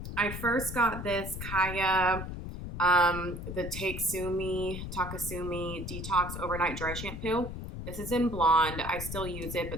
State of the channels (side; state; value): left; noise; rumble, 7 dB below the sound